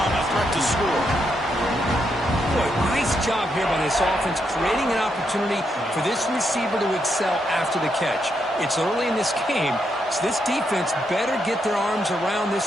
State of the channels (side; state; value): both; normal; correlation 0.80